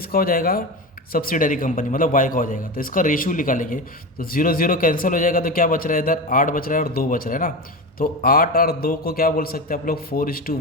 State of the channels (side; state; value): both; normal; correlation 0.23